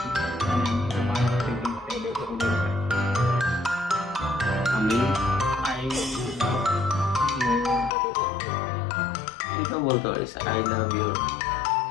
মানে আমি তোমার আকৃতি আমি আই লাভ ইউ। এটা বলতে পারিস, আই লাভ ইউ।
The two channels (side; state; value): right; drops out; at 7.9 s